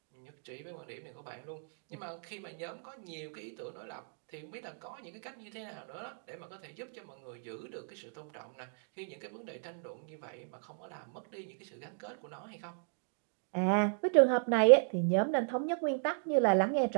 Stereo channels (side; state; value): left; silent; 54 dB below the other